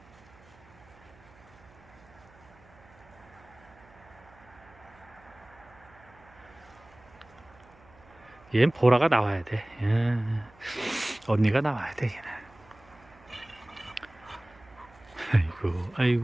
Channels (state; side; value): noise; right; hum, 25 dB below the sound